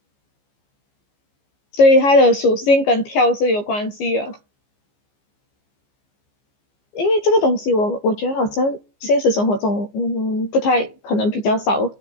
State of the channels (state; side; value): late; right; 15 ms